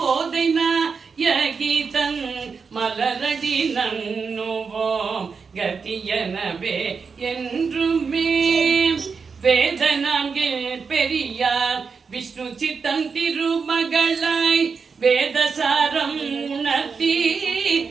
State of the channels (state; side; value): quieter; left; 5.4 dB